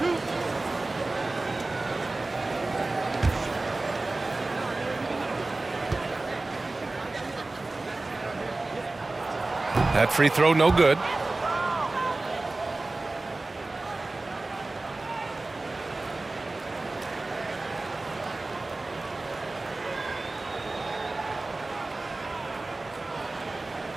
That free throw, no good.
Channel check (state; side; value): quieter; left; 3.1 dB